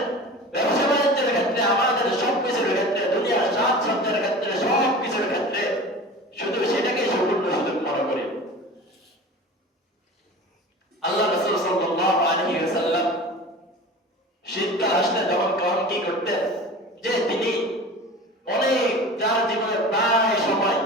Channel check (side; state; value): both; normal; correlation 0.36